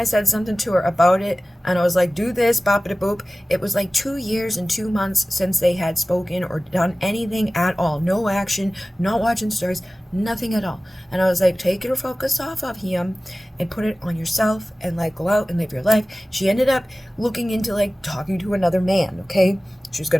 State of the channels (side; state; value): both; normal; correlation 0.97